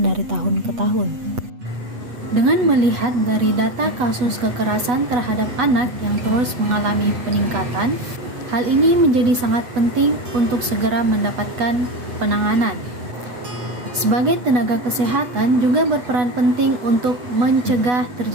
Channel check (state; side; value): late; left; 8.2 ms